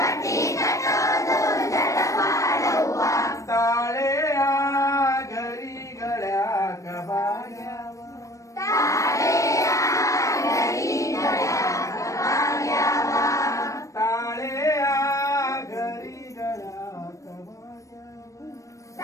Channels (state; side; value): late; right; 0.15 ms